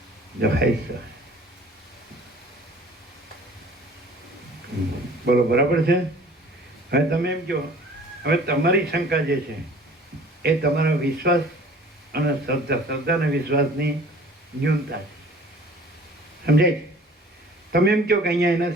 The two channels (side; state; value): both; normal; correlation 0.48